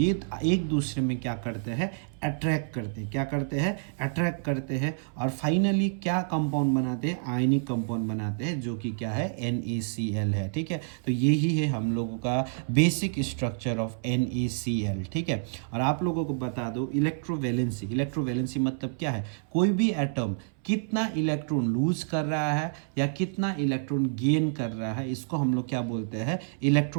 एक दूसरे में क्या करते हैं, अट्रैक्ट करते हैं। क्या करते हैं, अट्रैक्ट करते हैं और फाइनली क्या कंपाउंड बनाते हैं, आयनिक कंपाउंड बनाते हैं, जो कि क्या है, NaCl है, ठीक है। तो यही है हम लोगों का बेसिक स्ट्रक्चर ऑफ NaCl, ठीक है। और आप लोगों को बता दो इलेक्ट्रोवैलेंसी, इलेक्ट्रोवैलेंसी मतलब क्या है, कोई भी एटम कितना इलेक्ट्रॉन लूज कर रहा है या कितना इलेक्ट्रॉन गेन कर रहा है, इसको हम लोग क्या बोलते हैं,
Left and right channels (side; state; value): left; silent; 59 dB below the other